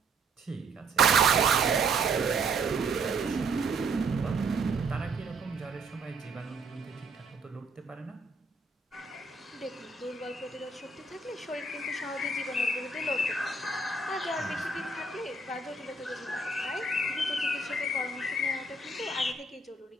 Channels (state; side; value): quieter; left; 3.4 dB